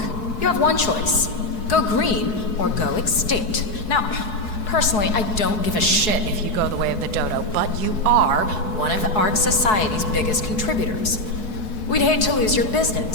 You have one choice. Go green or go extinct. Now, personally, I don't give a shit if you go the way of the dodo, but you are one of ARC Society's biggest contributors. We'd hate to lose your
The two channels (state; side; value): late; right; 4.7 ms